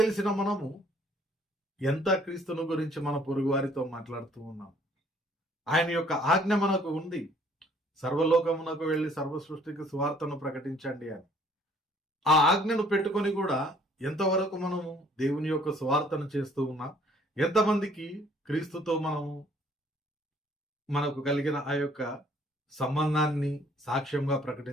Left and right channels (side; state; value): both; normal; correlation 0.60